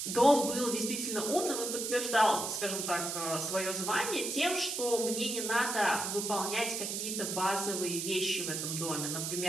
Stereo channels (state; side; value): noise; right; hiss, 3 dB below the sound